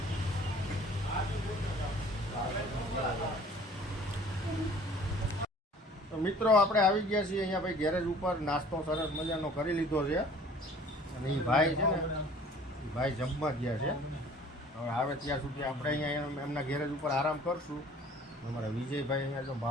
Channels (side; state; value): both; normal; correlation 0.50